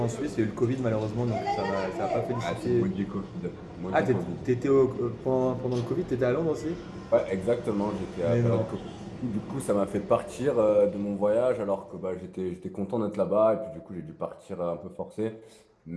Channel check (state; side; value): identical; both; correlation 1.00